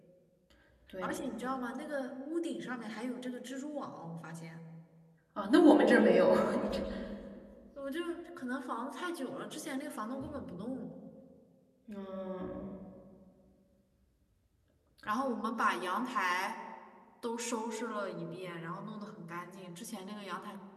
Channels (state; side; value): identical; both; correlation 1.00